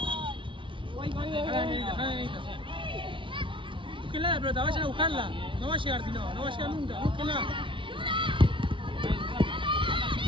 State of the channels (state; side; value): late; left; 0.25 ms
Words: Búsquenla la pelota, vayan a buscarla. No va a llegar si no va a llegar nunca. Búsquenla.